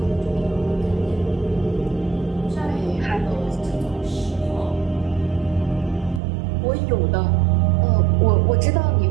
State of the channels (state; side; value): drops out; left; at 6.2 s